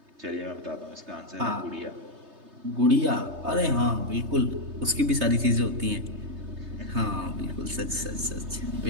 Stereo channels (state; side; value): late; left; 3.3 ms